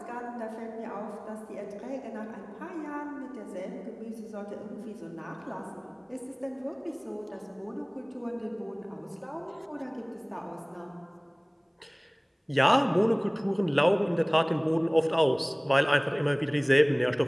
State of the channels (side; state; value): both; identical; correlation 1.00